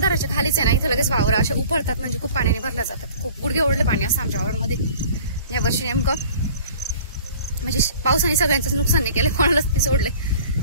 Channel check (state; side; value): inverted; both; correlation -0.47